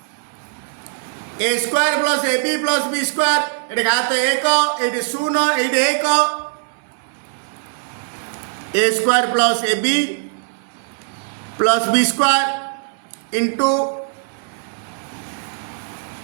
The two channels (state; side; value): silent; left; 61 dB below the other